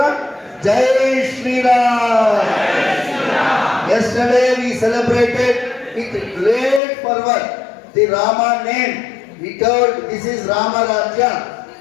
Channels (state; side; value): drops out; right; at 6.8 s